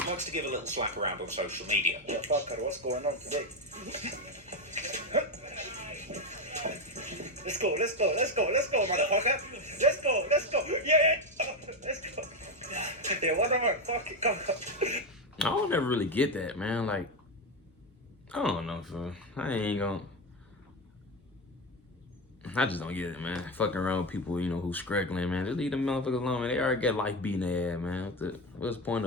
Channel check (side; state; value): both; normal; correlation 0.13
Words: likes to give a little slap around on social media. Yeah, fucker, what's going on today? Let's go, motherfucker. Let's go. Yeah, let's go. Yeah, whatever. Fuck it, come on. I don't ever really get that, man. Like, I don't know, so I just don't get it, man. Fucking around with people, you know, who's struggling, man. Just leave them motherfuckers alone, man. They already got life beating their ass, man. What's the point